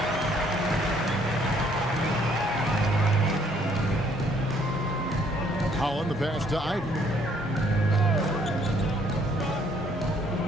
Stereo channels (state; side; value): normal; both; correlation 0.64